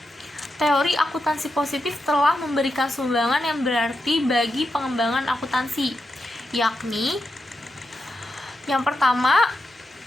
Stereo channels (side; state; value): both; normal; correlation 0.87